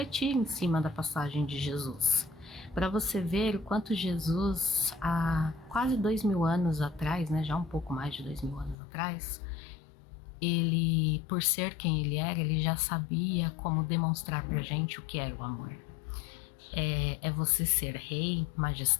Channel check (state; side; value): drops out; right; at 8.8 s